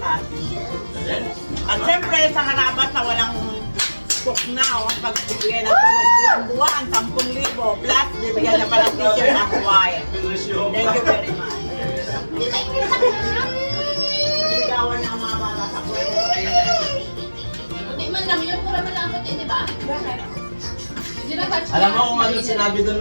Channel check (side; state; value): both; inverted; correlation -1.00